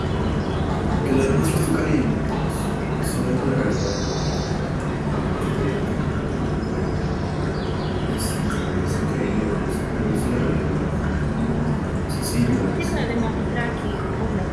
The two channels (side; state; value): both; identical; correlation 1.00